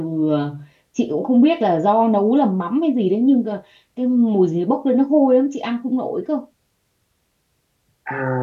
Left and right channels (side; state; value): both; identical; correlation 1.00